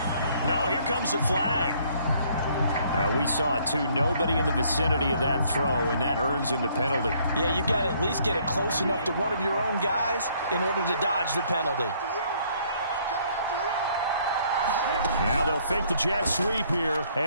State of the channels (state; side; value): inverted; both; correlation -0.64